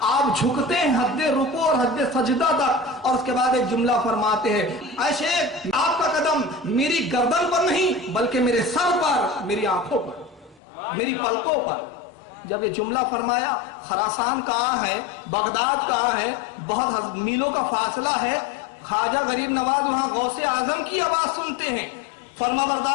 آپ جھکتے ہیں حد رکوع اور حد سجدہ تک، اور اس کے بعد ایک جملہ فرماتے ہیں، اے شیخ آپ کا قدم میری گردن پر نہیں بلکہ میرے سر پر، میری آنکھوں پر، میری پلکوں پر۔ جب یہ جملہ فرمایا، خراسان کہاں ہے، بغداد کہاں ہے، بہت میلوں کا فاصلہ ہے، خواجہ غریب نواز وہاں غوث اعظم کی آواز سنتے ہیں، فرما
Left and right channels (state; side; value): drops out; right; at 10.6 s